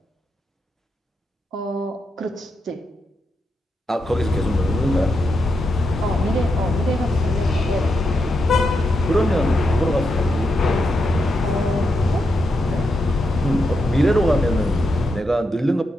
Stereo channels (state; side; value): normal; both; correlation 0.84